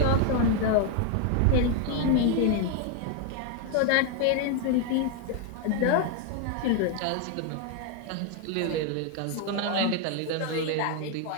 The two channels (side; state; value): both; different; correlation 0.01